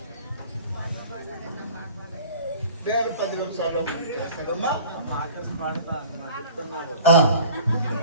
నేను 10 నిమిషాలు చేస్తానమ్మా.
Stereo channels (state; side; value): inverted; both; correlation -0.46